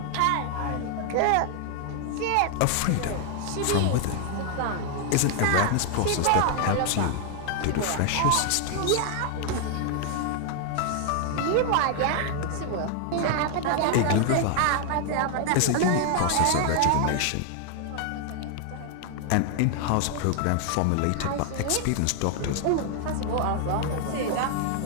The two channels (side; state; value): both; different; correlation 0.00